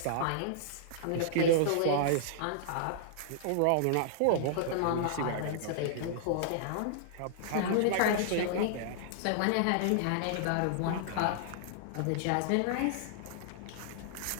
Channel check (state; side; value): different; both; correlation -0.01